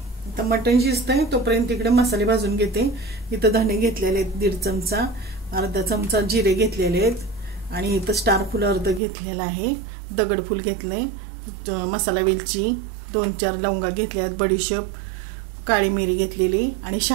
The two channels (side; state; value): left; drops out; at 9.0 s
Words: आता मटण शिजतंय तोपर्यंत इकडे मसाले भाजून घेते. इथं धणे घेतलेले आहेत 1.5 चमचा, अर्धा चमचा जिरे घेतलेले आहेत आणि इथं स्टार फुल अर्ध घेतलेलं आहे, दगडफूल घेतले, मसाला वेलची 2-4 लवंगा घेतल्या आहेत, बडीशेप, काळी मिरी घेतलेली आणि